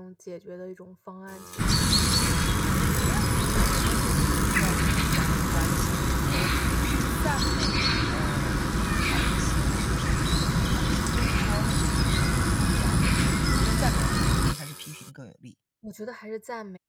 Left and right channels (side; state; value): both; identical; correlation 1.00